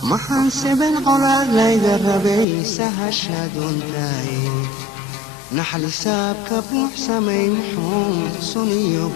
maxaan seben colaad layga rabay sahashaduntaay naxlisaabka buuxsamay muxuu suniyo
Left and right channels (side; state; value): right; drops out; at 2.5 s